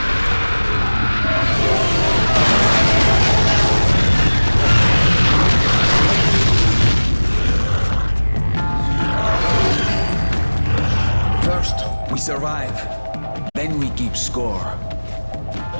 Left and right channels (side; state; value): both; inverted; correlation -1.00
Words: survive, then we keep score.